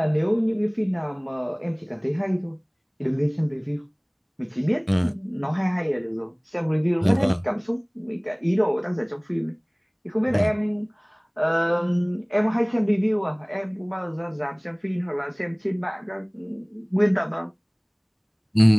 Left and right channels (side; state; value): both; identical; correlation 1.00